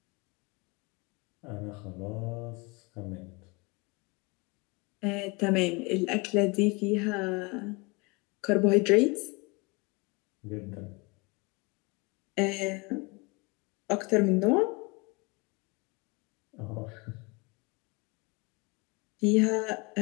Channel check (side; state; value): right; quieter; 27.6 dB